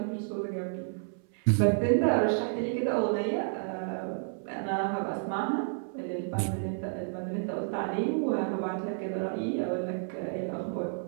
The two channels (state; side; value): silent; left; 57 dB below the other